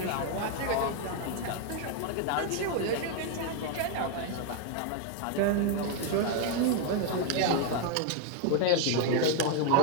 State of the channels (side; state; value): both; different; correlation 0.00